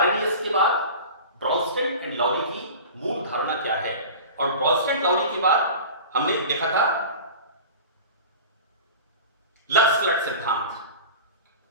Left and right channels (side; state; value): both; inverted; correlation -0.36